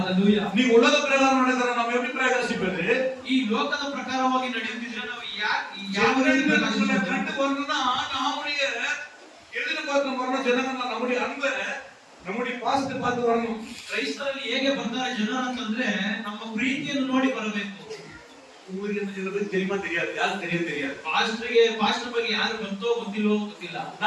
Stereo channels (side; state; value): both; identical; correlation 1.00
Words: நீ உலக பிரகாரம் நடக்கிற நம்ம எப்படி பிரகாசிப்பது? ಈ ಲೋಕದ ಪ್ರಕಾರವಾಗಿ ನಡೆಯುತ್ತಿದ್ರೆ ನಾವು ಯಾವ நம்மளை ರೀತಿ கண்டு ಪ್ರಕಾಶಿಸಬೇಕು? வரணும்னா நம்முடைய எதிர்பார்க்க வரணும். ஜனங்கள் நம்முடைய அன்பை, நம்முடைய பாசத்தை பார்த்து வரணும். ಕ್ರೈಸ್ತರಲ್ಲಿ ಹೇಗೆ ಬರ್ತಾರೆ ಜನರು ಅಂತಂದ್ರೆ ನಮ್ಮ ಪ್ರೀತಿಯನ್ನು ನೋಡಿ ಬರಬೇಕು. உங்களுக்கு என்ன சில பேருக்கு தெரியுமா தெரியாது, யாருக்கு தெரியாது. ಪಾಸ್ಟರ್ ಬಗ್ಗೆ ಯಾರು ಗೊತ್ತೋ ಗೊತ್ತಿಲ್ವೋ ಗೊತ್ತಿಲ್ಲ.